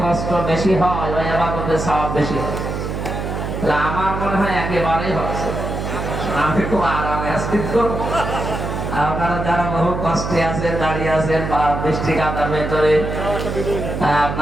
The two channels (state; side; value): noise; right; hum, 4 dB below the sound